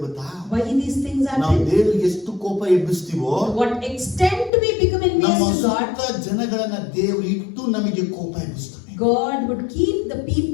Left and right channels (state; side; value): drops out; right; at 4.5 s